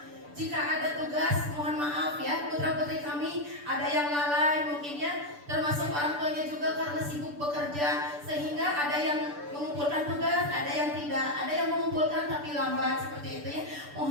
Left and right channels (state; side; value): late; left; 6.8 ms